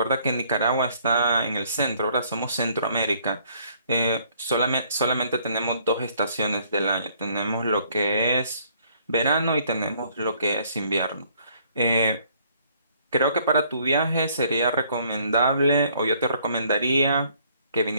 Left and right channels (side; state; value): both; inverted; correlation -0.63